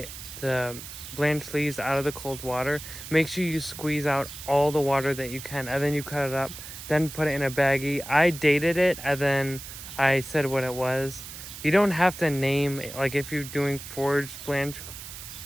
blanched leaves out of the cold water, make sure you squeeze out all the water that you can, and then you cut it up, then put it in a baggie. I dated it and then I said what it was. You don't have to name, if you're doing foraged blanched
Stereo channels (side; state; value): right; noise; hiss, 12 dB below the sound